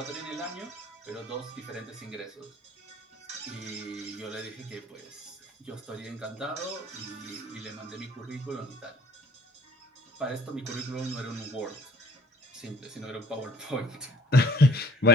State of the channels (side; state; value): both; normal; correlation 0.56